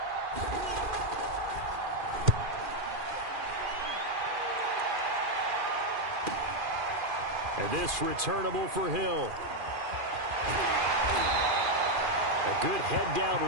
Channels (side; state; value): left; late; 2.4 ms